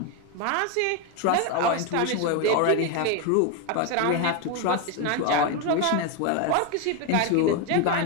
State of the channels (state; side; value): different; both; correlation 0.02